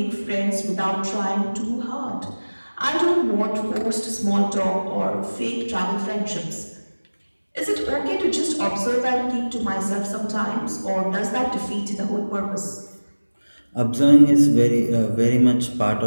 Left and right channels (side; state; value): both; inverted; correlation -1.00